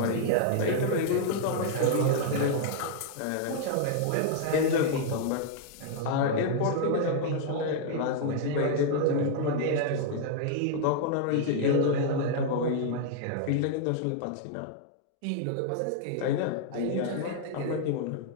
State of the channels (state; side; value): different; both; correlation -0.01